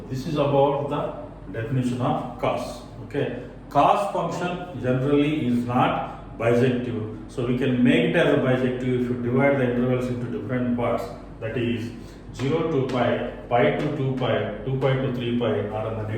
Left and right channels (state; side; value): identical; both; correlation 1.00